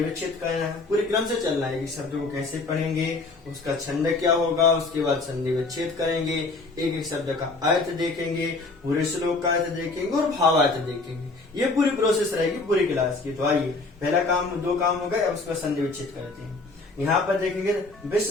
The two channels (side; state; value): right; quieter; 3.5 dB